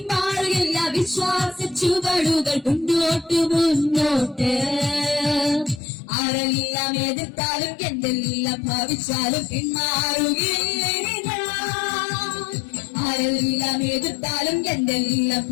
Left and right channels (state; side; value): drops out; right; at 5.8 s